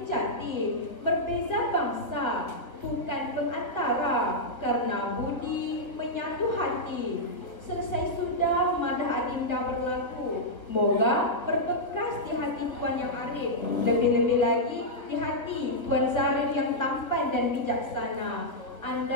jati. Berbeza bangsa, bukan pengantara, karena budi menyatu hati. Selesai sudah madah Adinda berlagu, moga berbekas di hati tuan yang arif, lebih-lebih lagi di hati tuan Zarif yang tampan dan bijaksana.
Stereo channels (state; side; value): late; right; 1.1 ms